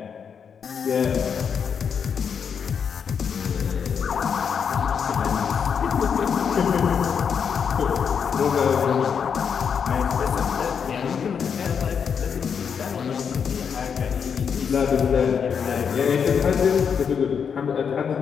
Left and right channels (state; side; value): quieter; right; 6.9 dB